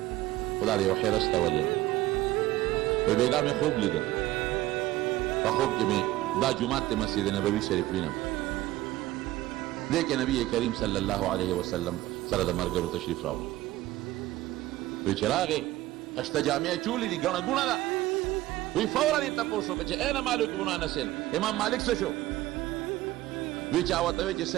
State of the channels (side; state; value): left; quieter; 16.5 dB